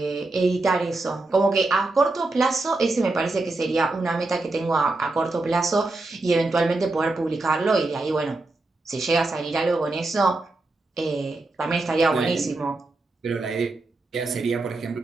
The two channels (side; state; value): left; quieter; 3.1 dB